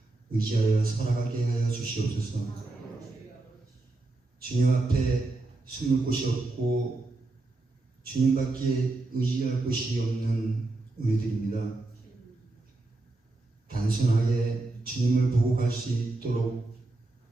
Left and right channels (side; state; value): left; quieter; 3.1 dB